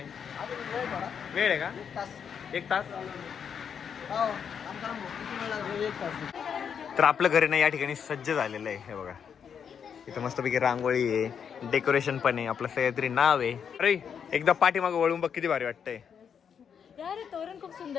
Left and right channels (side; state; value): right; quieter; 7.4 dB